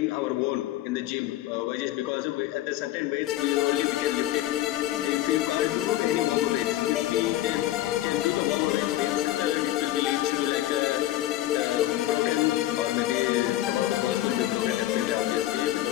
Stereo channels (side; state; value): right; quieter; 14.8 dB